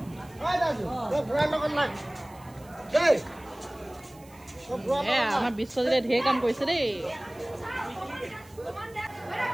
আমাৰ বিশ্বজিতে ঢেৰ কাম কৰিছে দেই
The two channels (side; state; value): right; noise; hiss, 25 dB below the sound